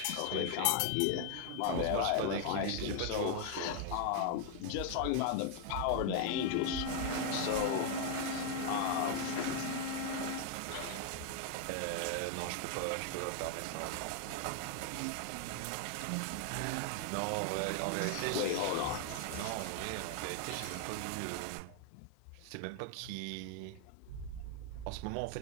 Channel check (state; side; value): different; both; correlation 0.00